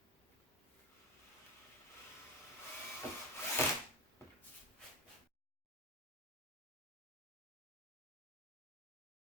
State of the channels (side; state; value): both; normal; correlation 0.18